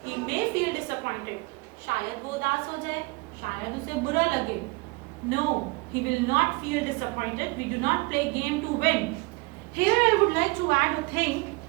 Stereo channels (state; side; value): quieter; left; 26.0 dB